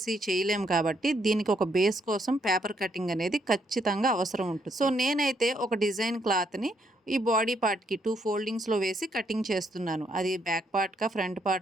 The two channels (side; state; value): both; normal; correlation 0.73